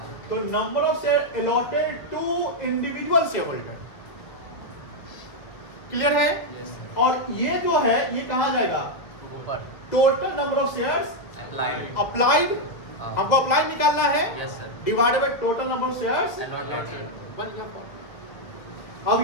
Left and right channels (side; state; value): right; late; 1.7 ms